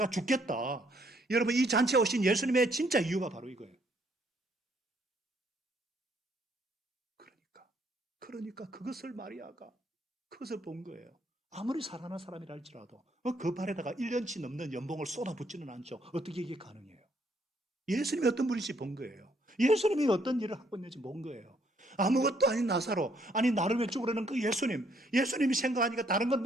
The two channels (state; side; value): normal; both; correlation 0.68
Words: 죽겠다. 여러분, 이 잔치에 오신 예수님의 진짜 이유가 바로 이거예요. 그러니까 그것을 마리아가 그것을 본 거예요. 아무리 살아난 사람이라 할지라도 그 발에다가 1년치 넘는 연봉을 쏟아붓지는 않죠. 어떻게 이게 가능해요? 예수님이 어떤 분인지 본 거예요. 예수님이 어떤 일을 하고 있는지 본 거예요. 아무것도 아닌 나사로, 아니 나를 왜 죽으려는 그 예수님이 생각하니까 다른 건